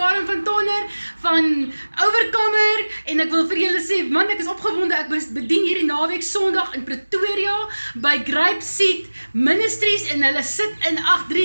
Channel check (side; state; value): both; inverted; correlation -1.00